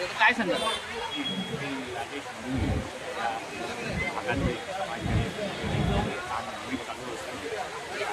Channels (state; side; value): identical; both; correlation 1.00